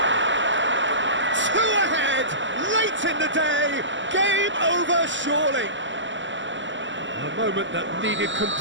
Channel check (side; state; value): left; late; 0.54 ms